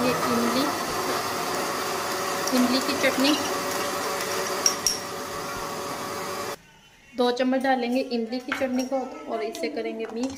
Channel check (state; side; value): identical; both; correlation 1.00